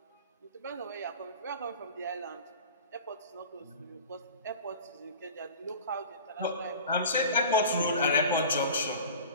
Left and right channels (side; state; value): both; inverted; correlation -0.38